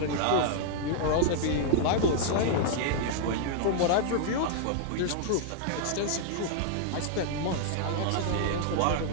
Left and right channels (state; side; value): different; both; correlation 0.00